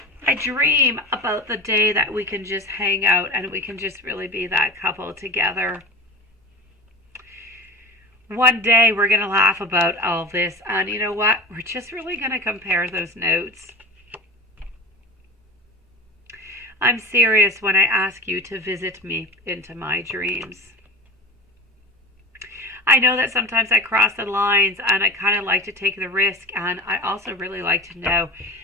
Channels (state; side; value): normal; both; correlation 0.31